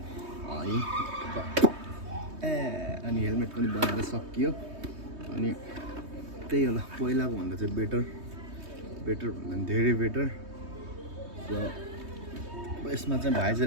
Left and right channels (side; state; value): left; late; 3.2 ms